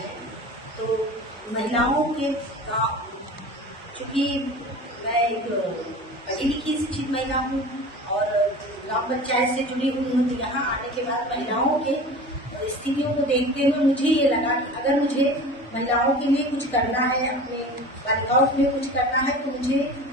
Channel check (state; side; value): normal; both; correlation 0.37